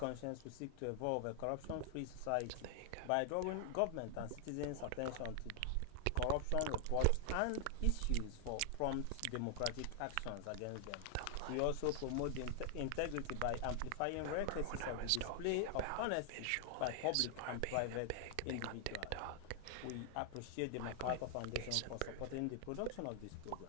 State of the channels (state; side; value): different; both; correlation 0.00